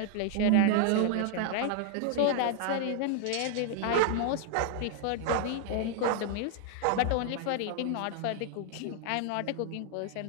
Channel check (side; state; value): both; different; correlation 0.00